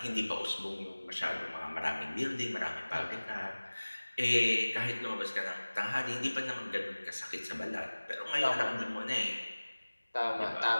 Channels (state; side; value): inverted; both; correlation -1.00